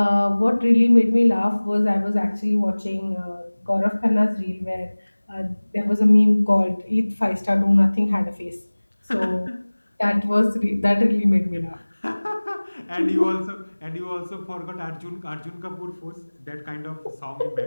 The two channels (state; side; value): inverted; both; correlation -1.00